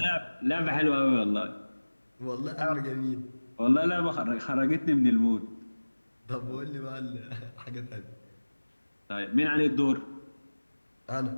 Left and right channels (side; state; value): both; inverted; correlation -1.00